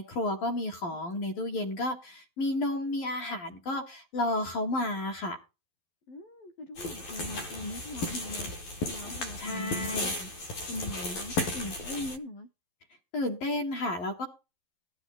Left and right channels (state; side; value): late; right; 11 ms